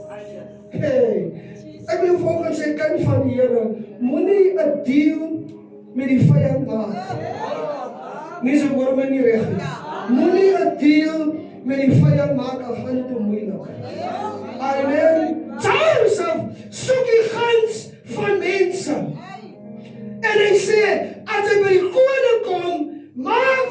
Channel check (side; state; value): both; identical; correlation 1.00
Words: Hey, ek wil volgens sê, kind van die Here, moenie 'n deal met die vyand maak. Nie so hoor my nie reg nie. Moenie 'n deal met die vyand maak, al gaan dit te moeilik. Amen. Josef soek die guns van mense. En hy sê, as hy by die koning kom, maak